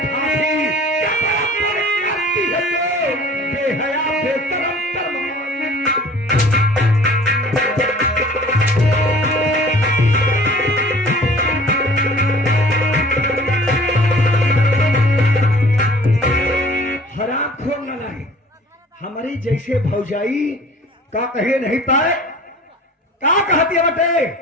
हमारी जैसे भौजाई का कहे नहीं पाए, का कहती है बटे?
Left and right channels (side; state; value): both; normal; correlation 0.48